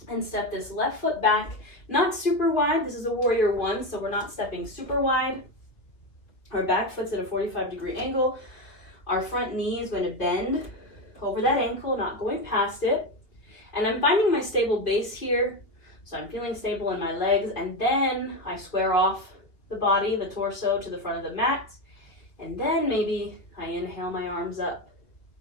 and step this left foot back, not super wide. This is a warrior 1, so we're not stepping super wide. Our back foot's at a 45-degree angle. Our front knee is going to bend over that ankle, not going past it. And I'm finding my stable base here. So I'm feeling stable in my legs. And then I square off the body, the torso, to the front of the mat. And then maybe I inhale my arms up.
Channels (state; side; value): late; right; 2.2 ms